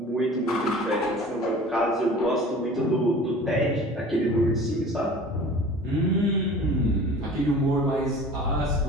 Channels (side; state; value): both; normal; correlation 0.42